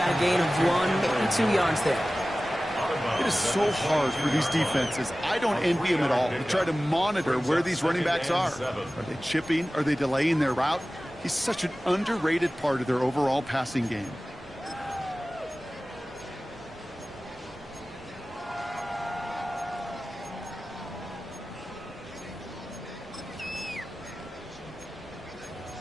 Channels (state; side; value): normal; both; correlation 0.97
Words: a gain of 1, maybe 2 yards there. It is so hard for these defenses. I don't envy them at all. To try to monitor where these running backs are. Are they chipping? Are they delaying their route? He's such an underrated part of their overall passing game.